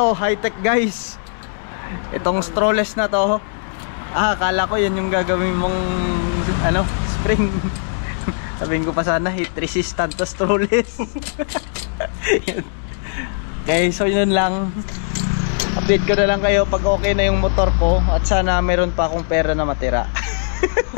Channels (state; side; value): silent; right; digital silence